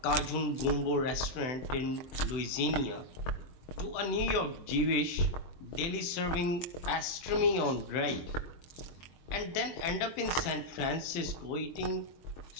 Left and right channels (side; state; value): right; late; 23 ms